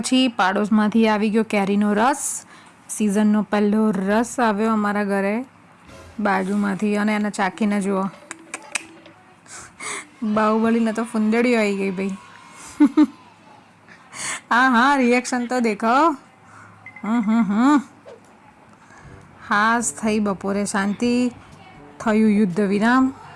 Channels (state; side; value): identical; both; correlation 1.00